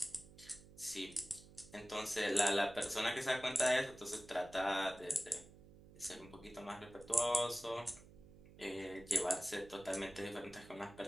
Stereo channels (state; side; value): noise; right; hum, 20 dB below the sound